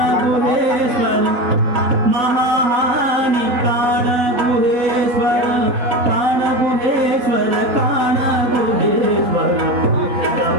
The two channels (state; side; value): late; left; 4.0 ms